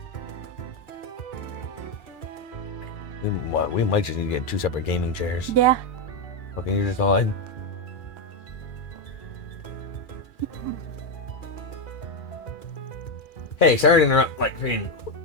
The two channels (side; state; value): right; late; 2.4 ms